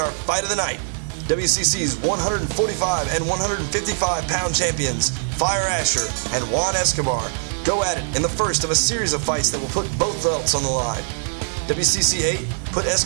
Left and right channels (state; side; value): silent; left; digital silence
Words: fight of the night, WCC's 145 and 155-pound champions, Fire Asher and Juan Escobar, go at it in the first of a series of fights that will put both belts on the line. WCC VIII put